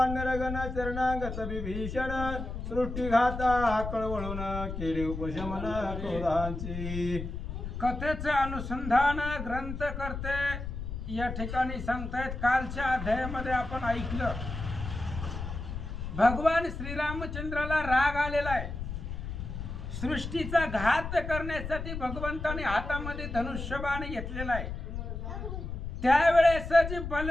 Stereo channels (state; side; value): noise; left; rumble, 6 dB below the sound